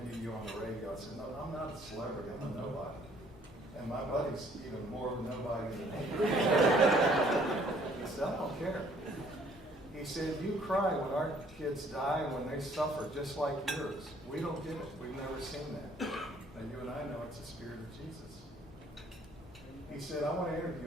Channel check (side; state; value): both; normal; correlation 0.61